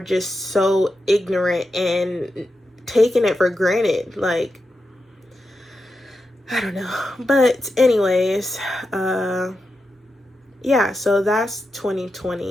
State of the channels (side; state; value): both; normal; correlation 0.88